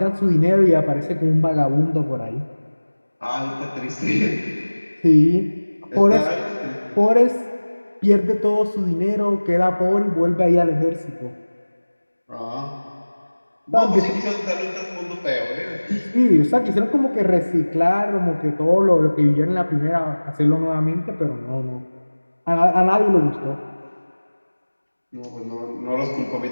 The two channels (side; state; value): both; inverted; correlation -1.00